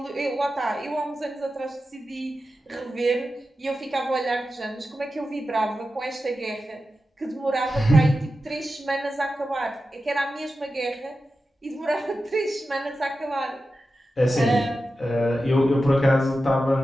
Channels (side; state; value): both; normal; correlation 0.92